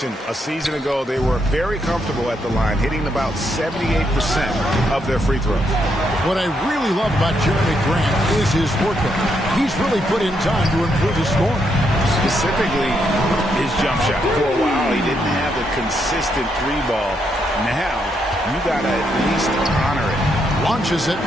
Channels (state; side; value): normal; both; correlation 0.78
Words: a season ago, they were very comfortable at the line, hitting about 78% of their free throws. What I really love about Jeremy Grant is his work ethic. He's really put in time to improve his scoring. Specifically, his jump shot. For a while, he didn't have a consistent 3-ball. Now, you got to at least honor it. Launches it.